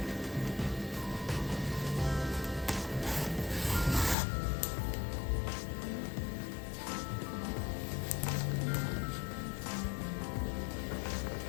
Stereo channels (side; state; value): right; drops out; at 4.2 s